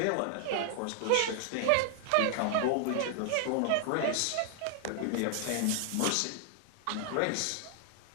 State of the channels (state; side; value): different; both; correlation 0.00